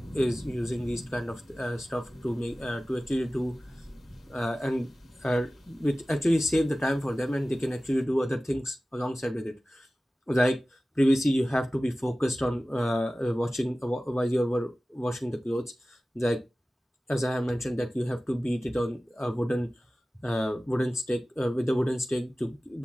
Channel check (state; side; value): normal; both; correlation 0.97